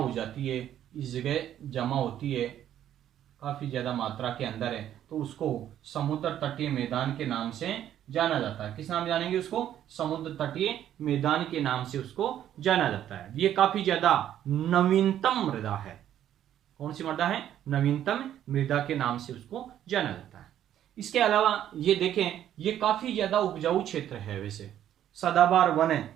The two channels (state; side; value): quieter; left; 11.1 dB